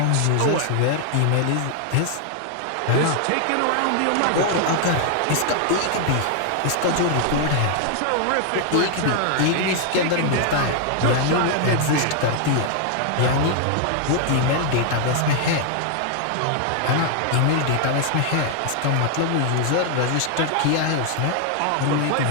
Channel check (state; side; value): different; both; correlation 0.00